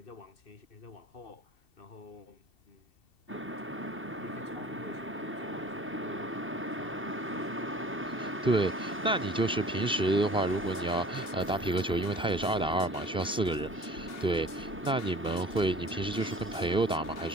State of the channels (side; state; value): right; late; 2.7 ms